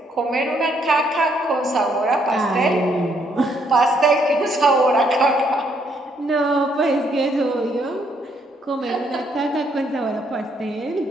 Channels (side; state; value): both; normal; correlation 0.71